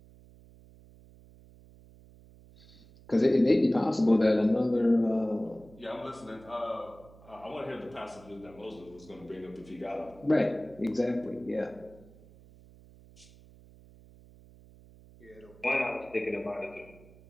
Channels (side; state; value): right; noise; hum, 23 dB below the sound